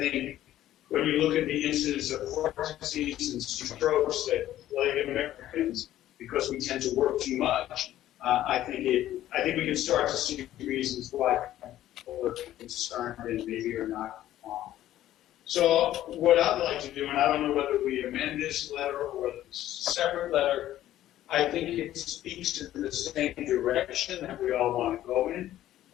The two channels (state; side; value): quieter; right; 13.2 dB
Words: when you look at the incidence of heart disease and strokes that plague Americans because we tend to work too much, I think we can start to see reasons why people are concerned and maybe are not wrong. So what I'd like to do, and I don't know whether we amend this letter or whether it's a separate letter, I think it speaks in the same direction that we all want to go in,